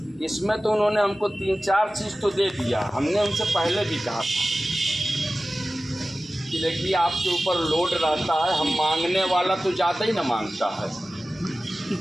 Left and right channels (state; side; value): normal; both; correlation 0.96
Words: इसमें तो उन्होंने हमको 3-4 चीज़ तो दे दिया। हमने उनसे पहले भी कहा था कि देखिए आपके ऊपर लोड रहता है, हम मांगने वाला तो ज़्यादा ही ना मांगता है,